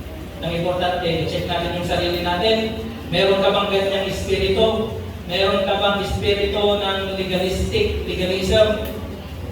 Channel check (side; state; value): both; identical; correlation 1.00